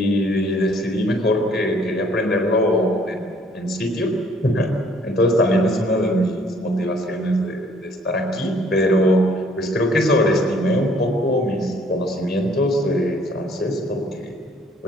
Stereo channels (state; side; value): normal; both; correlation 0.60